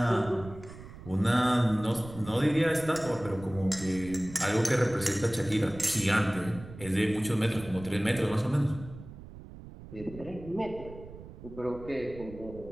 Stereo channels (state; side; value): noise; right; rumble, 15 dB below the sound